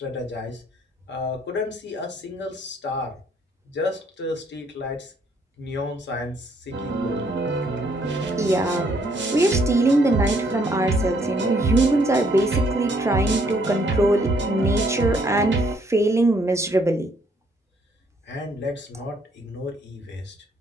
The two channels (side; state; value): both; normal; correlation 0.67